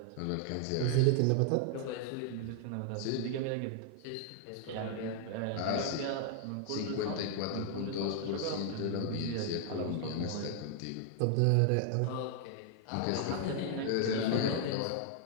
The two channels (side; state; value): both; different; correlation 0.00